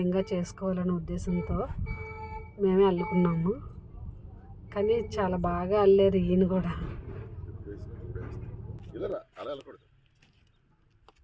చేసుకోవాలనే ఉద్దేశంతో మేమే అల్లుకున్నాము. కానీ చాలా బాగా అల్లారు ఈయన కూడా.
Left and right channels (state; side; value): identical; both; correlation 1.00